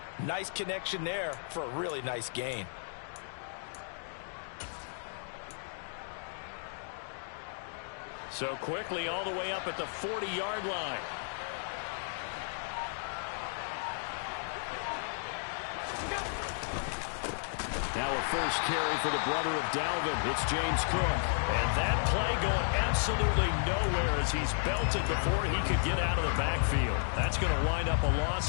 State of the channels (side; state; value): right; silent; digital silence